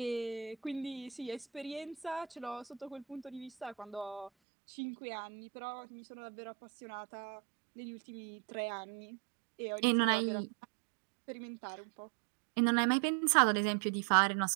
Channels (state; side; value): drops out; left; at 4.3 s